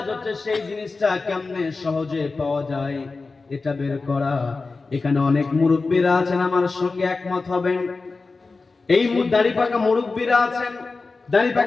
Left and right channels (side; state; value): right; quieter; 3.9 dB